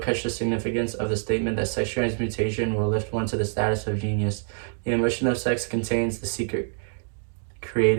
the significance of the statement that sex transmutation will lift one to the status of genius. The emotion of sex contains the secret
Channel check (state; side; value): silent; left; 58 dB below the other